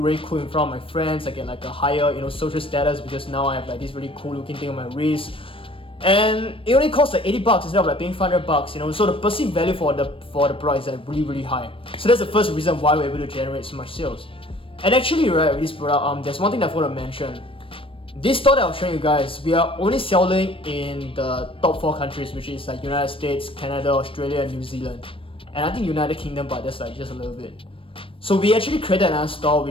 cool in front of my friends. I get like a higher, social status because now I have like this really cool looking thing on my wrist. And it only costs like $80 instead of like paying $500, So the perceived value for the product is like really high. So that's the first reason why we're able to generate so much sales. And actually, right, with this product, there's one thing that I want to mention. This store that I'm showing you guys, we are only selling in the top 4 countries, which is like United States, Canada, Australia, and New Zealand. And I think United Kingdom, but that's like just a little bit. So we actually created another store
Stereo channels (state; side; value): late; right; 0.26 ms